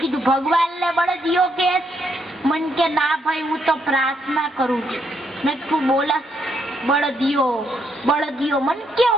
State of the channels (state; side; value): normal; both; correlation 0.75